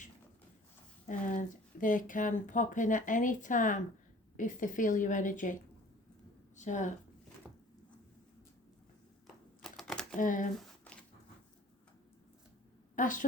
And they can pop in at any time if they feel your energy. So,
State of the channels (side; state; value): both; normal; correlation 0.49